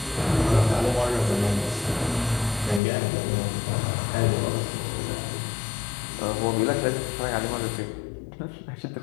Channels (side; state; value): right; drops out; at 2.8 s